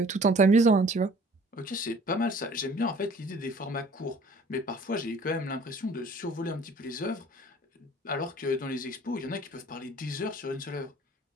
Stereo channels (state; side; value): normal; both; correlation 0.51